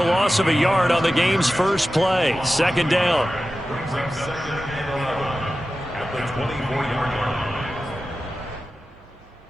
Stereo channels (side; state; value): right; noise; hum, 29 dB below the sound